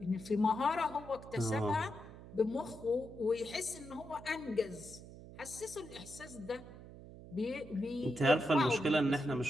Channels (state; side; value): noise; right; hum, 16 dB below the sound